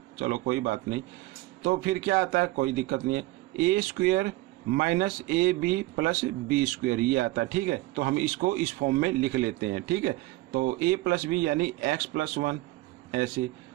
चलो कोई बात नहीं। तो फिर क्या आता है, कोई दिक्कत नहीं है, A square minus A B plus B square, ये आता है, ठीक है। तो हम इसको इस फॉर्म में लिख लेते हैं, ठीक है। तो a प्लस बी यानी x प्लस 1 ऐसे,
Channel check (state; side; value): quieter; left; 19.2 dB